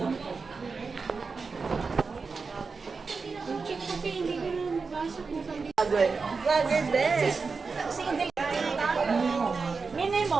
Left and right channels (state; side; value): quieter; left; 4.7 dB